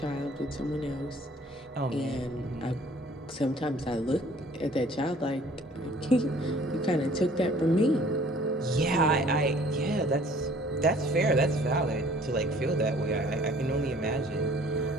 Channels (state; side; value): normal; both; correlation 0.54